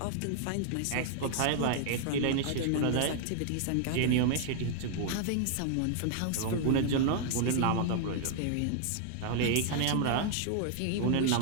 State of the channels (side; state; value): both; different; correlation 0.00